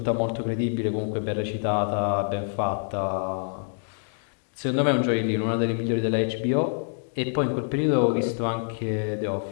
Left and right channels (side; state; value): right; silent; digital silence